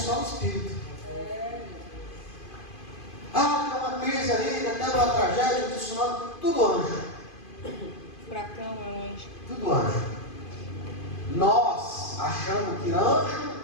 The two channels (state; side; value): late; right; 2.5 ms